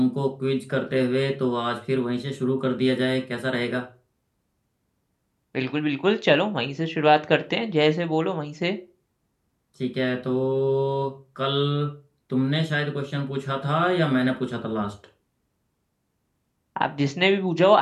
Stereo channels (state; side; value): identical; both; correlation 1.00